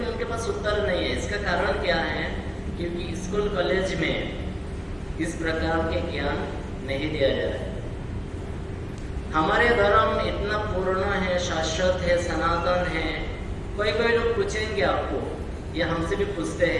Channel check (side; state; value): both; identical; correlation 1.00